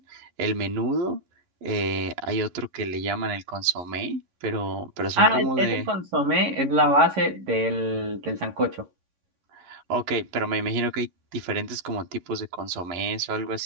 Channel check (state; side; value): late; left; 11 ms